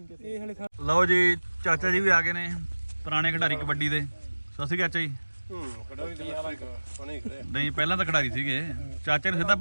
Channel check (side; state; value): both; inverted; correlation -1.00